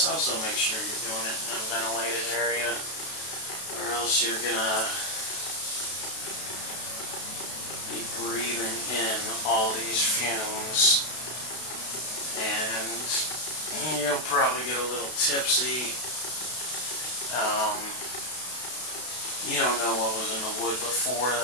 also make sure you're doing it in a ventilated area, or else you're going to be breathing in all these fumes, and you'll probably get a little tipsy. You don't know what was in the wood before.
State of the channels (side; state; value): right; late; 32 ms